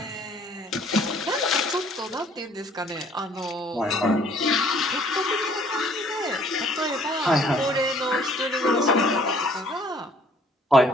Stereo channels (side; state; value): both; normal; correlation 0.58